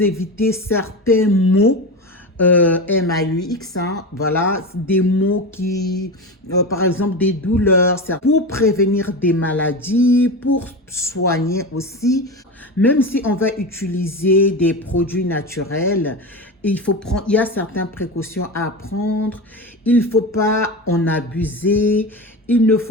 éviter certains maux. MAUX, hein, voilà, des mots qui, par exemple, des douleurs, pour prévenir des maladies, pour soigner aussi. Même si on va utiliser des produits naturels, il y a certaines précautions à prendre. Il ne faut pas en abuser. Il ne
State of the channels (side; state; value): both; normal; correlation 0.23